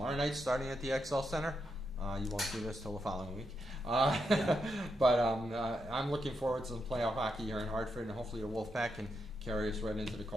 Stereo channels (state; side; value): normal; both; correlation 0.83